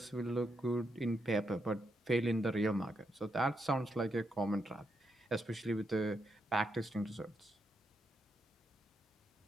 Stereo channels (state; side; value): normal; both; correlation 0.82